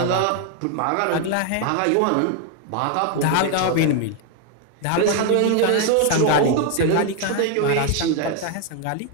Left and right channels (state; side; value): different; both; correlation 0.01